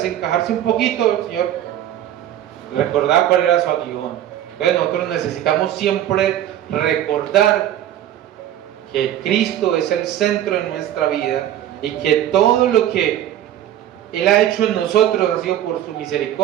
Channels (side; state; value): left; quieter; 11.7 dB